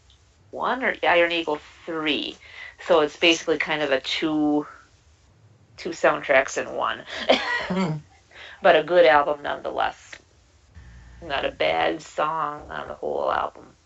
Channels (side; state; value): both; identical; correlation 1.00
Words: 1 or Iron Eagle 3. So it's basically kind of a two soundtracks in one. But a good album nonetheless. Not a bad song on the whole album.